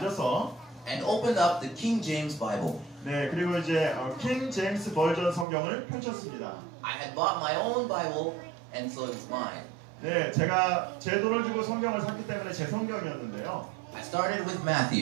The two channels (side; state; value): left; drops out; at 5.5 s